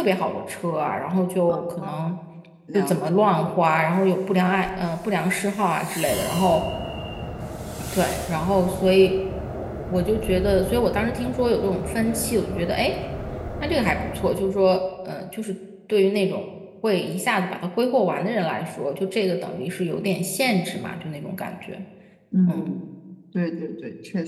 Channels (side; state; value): both; identical; correlation 1.00